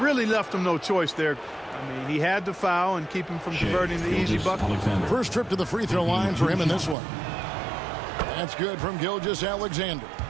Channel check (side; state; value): left; drops out; at 7.0 s